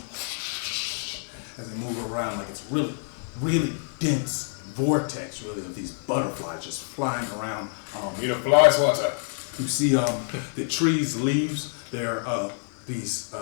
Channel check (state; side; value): silent; right; 60 dB below the other